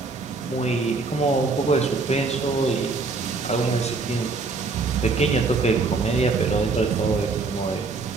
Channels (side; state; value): left; quieter; 4.0 dB